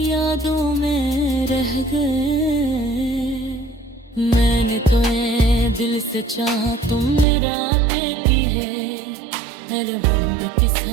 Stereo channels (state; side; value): drops out; left; at 7.2 s